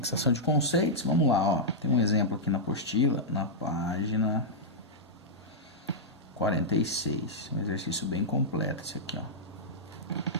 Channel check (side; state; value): both; normal; correlation -0.09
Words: de conceitos, vamos lá, ó. Tem um exemplo aqui na apostila, na página 46. Um exercício bem completo esse aqui, ó.